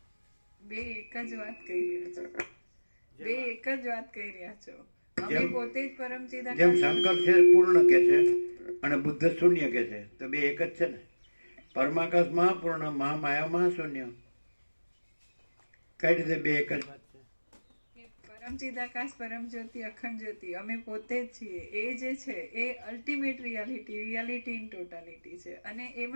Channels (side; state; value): both; inverted; correlation -1.00